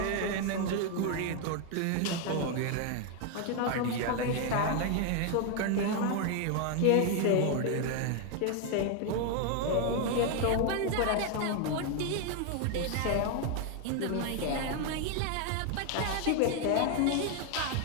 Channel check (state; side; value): different; both; correlation 0.01